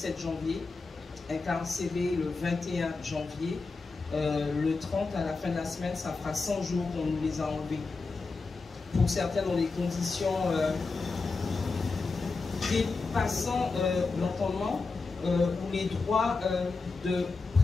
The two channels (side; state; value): right; quieter; 4.1 dB